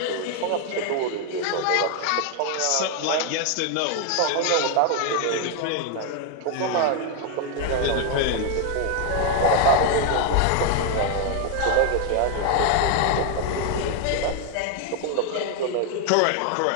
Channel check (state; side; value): different; both; correlation 0.01